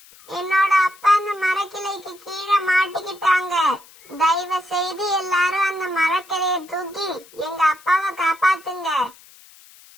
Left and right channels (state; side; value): noise; left; hiss, 24 dB below the sound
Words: என்னோட அப்பா அந்த மரக்கிளைக்கு கீழே மாட்டிக்கிட்டாங்க. தயவு செய்து எல்லாரும் அந்த மரக்கிளைய தூக்கி எங்க அப்பாவை காப்பாத்துங்க.